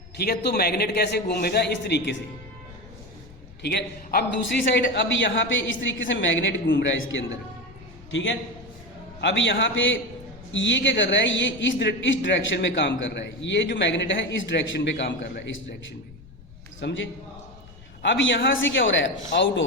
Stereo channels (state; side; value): noise; left; rumble, 20 dB below the sound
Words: ठीक है, तो मैग्नेट कैसे घूमेगा, इस तरीके से। ठीक है, अब दूसरी साइड, अब यहाँ पे इस तरीके से मैग्नेट घूम रहा है इसके अंदर। ठीक है, अब यहाँ पे ये क्या कर रहा है, ये इस डायरेक्शन में काम कर रहा है, ये जो मैग्नेट है इस डायरेक्शन पे काम कर रहा है, इस डायरेक्शन में। समझे? अब यहाँ से क्या हो रहा है, आउट